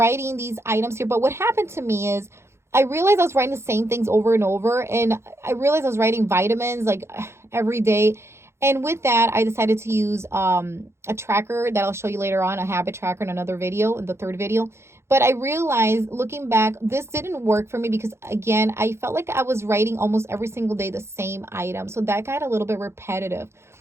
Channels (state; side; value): late; left; 0.13 ms